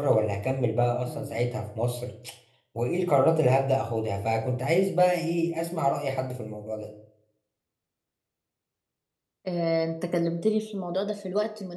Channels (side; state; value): both; identical; correlation 1.00